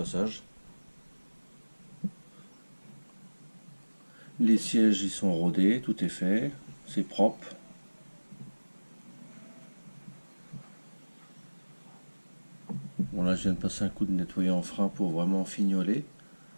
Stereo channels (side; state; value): both; inverted; correlation -1.00